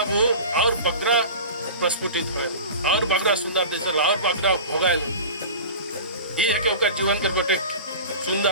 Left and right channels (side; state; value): both; inverted; correlation -0.35